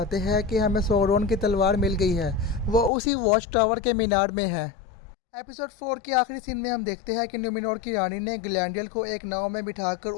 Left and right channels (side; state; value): right; drops out; at 2.9 s